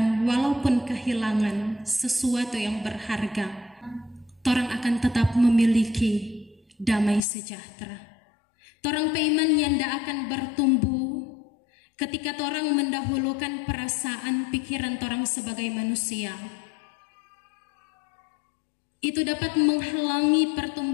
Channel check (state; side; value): drops out; right; at 7.2 s